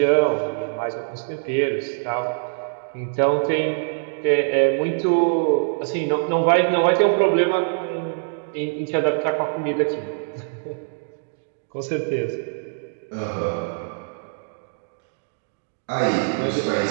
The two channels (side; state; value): left; silent; digital silence